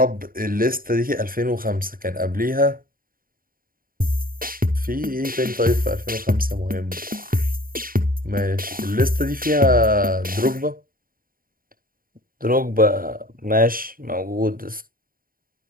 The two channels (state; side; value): late; left; 0.41 ms